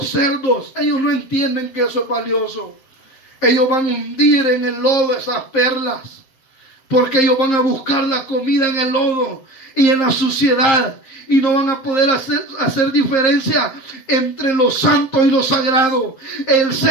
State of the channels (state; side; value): late; right; 7.6 ms